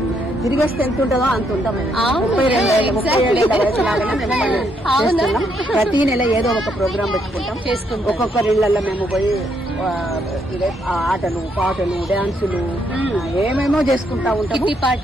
తిరిగేస్తే ఎంత ఉంటుందో అంత ఉంటాము. 37 వయసు లాగానే ప్రతి నెల ఏదో ఒక ప్రోగ్రాం పెట్టుకుంటాం. ఒక్కొక్కరి ఇళ్లలో మేము పోయి ఆటలు పాటలు డాన్సులు ఏమేమో చేసుకుంటా ఉంటాము.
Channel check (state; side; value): normal; both; correlation 0.74